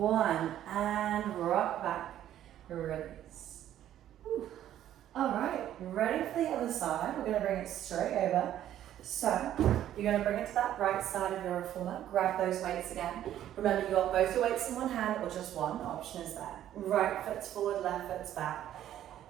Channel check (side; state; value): left; quieter; 11.7 dB